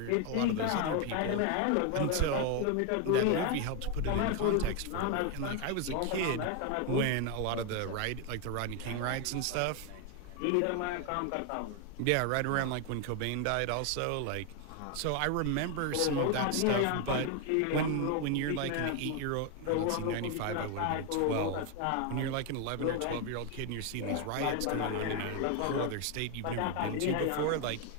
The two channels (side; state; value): both; different; correlation 0.01